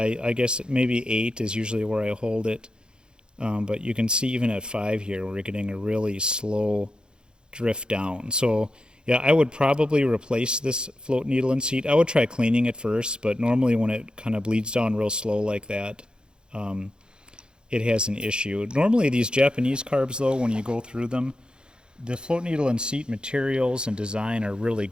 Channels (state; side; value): late; left; 0.049 ms